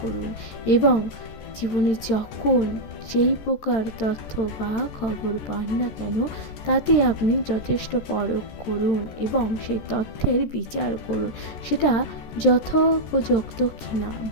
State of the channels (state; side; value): late; right; 13 ms